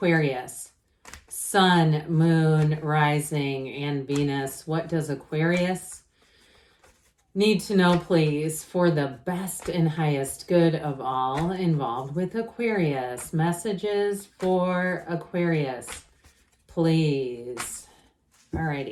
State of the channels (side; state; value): both; identical; correlation 1.00